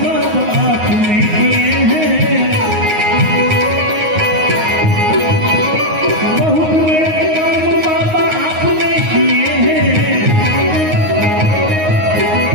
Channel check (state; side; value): late; left; 9.5 ms